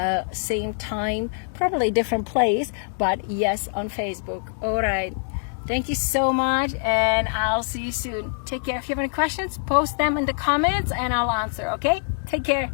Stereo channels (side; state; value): right; silent; digital silence